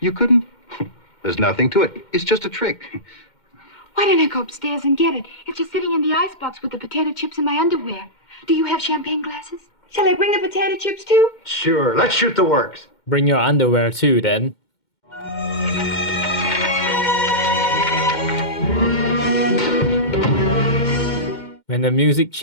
couldn't? There's nothing to it. It's just a trick. Why don't I go upstairs and get it? It's just sitting in the icebox with the potato chips in my underwear. Do you have champagne glasses? Shall I bring the potato chips too? Sure. Let's shoot the works. Bring your underwear too, then. When the music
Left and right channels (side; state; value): right; late; 2.1 ms